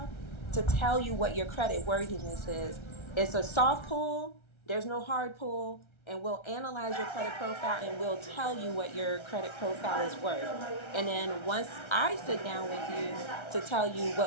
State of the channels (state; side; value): late; right; 1.3 ms